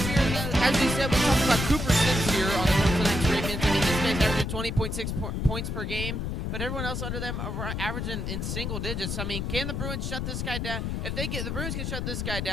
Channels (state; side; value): noise; left; rumble, 2 dB below the sound